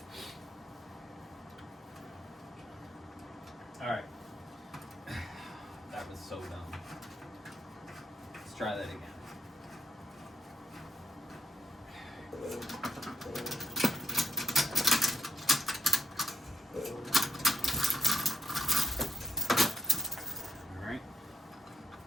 Alright. That was so dumb. Let's try that again. Alright.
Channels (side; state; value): both; normal; correlation 0.77